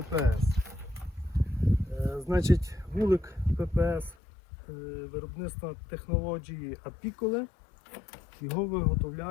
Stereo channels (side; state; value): right; drops out; at 4.2 s